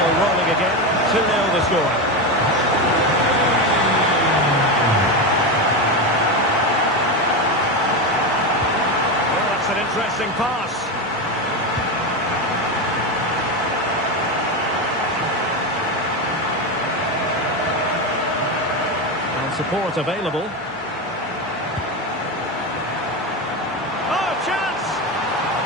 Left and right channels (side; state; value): both; normal; correlation 0.15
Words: rolling again. 2-0 the score. An interesting pass. And support available. Oh, chance!